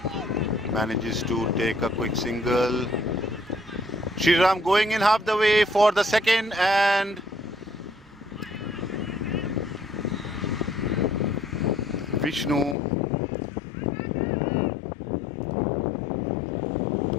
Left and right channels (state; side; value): drops out; right; at 12.8 s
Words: Manages to take a quick single. Shriram going in half the way for the second, and Vishnu